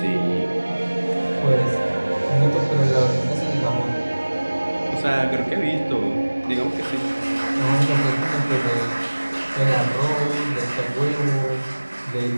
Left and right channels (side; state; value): both; inverted; correlation -1.00